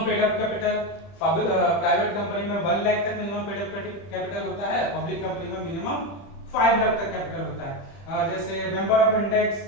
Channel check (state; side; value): late; right; 30 ms